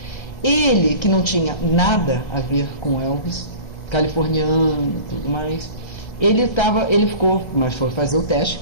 Ele, que não tinha nada a ver com Elvis, californiano e tudo mais, ele ficou, mas foi fazer o teste,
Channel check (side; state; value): right; late; 1.3 ms